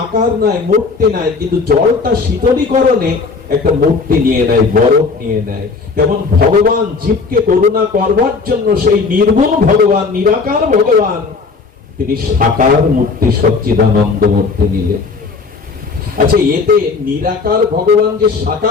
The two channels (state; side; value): quieter; right; 4.5 dB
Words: আকার নাই, মূর্তি নাই, কিন্তু জলটা শীতলীকরণে একটা মূর্তি নিয়ে নেয়, বরফ নিয়ে নেয়। যেমন ভগবান জীবকে করুণা করবার জন্য সেই নির্গুণ ভগবান, নিরাকার ভগবান, তিনি সাকার মূর্তি, সচ্চিদানন্দ মূর্তি নিলেন। আচ্ছা, এতে নিরাকার ভগবান যে